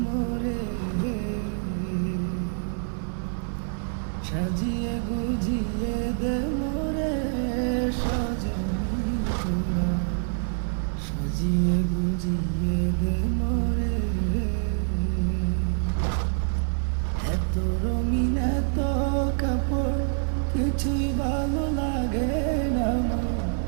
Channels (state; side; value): silent; left; digital silence